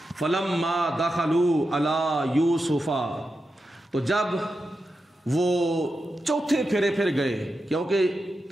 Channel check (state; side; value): normal; both; correlation 0.89